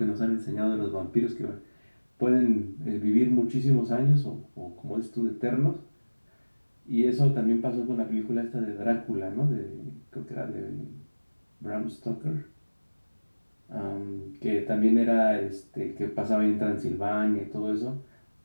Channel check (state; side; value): inverted; both; correlation -1.00